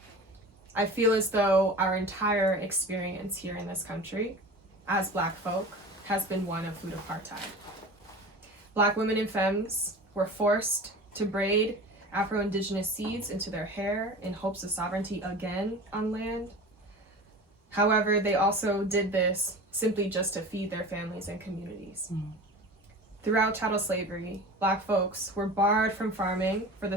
feel as though our entire experience here in this country as Black folk has been one of food apartheid. Black women and femmes were forced to braid Afro-Indigenous seeds into their hair in hopes of sovereignty again on land. However, they also did this simply just to feed their families and communities. Throughout chattel slavery, Black folks were barred from farming for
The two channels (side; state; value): both; normal; correlation 0.35